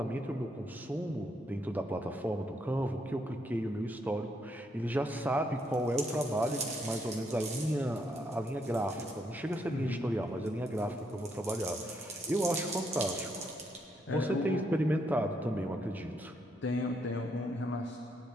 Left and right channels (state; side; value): normal; both; correlation 0.75